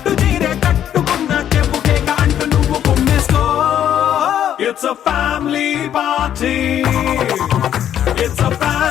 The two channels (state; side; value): quieter; right; 10.3 dB